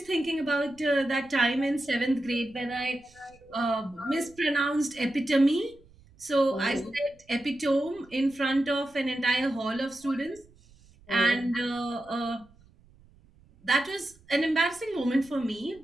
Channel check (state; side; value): noise; right; rumble, 28 dB below the sound